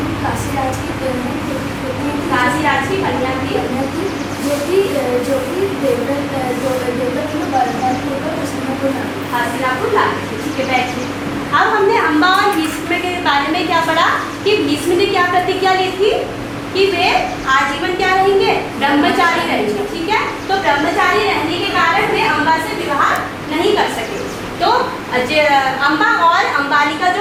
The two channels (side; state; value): both; identical; correlation 1.00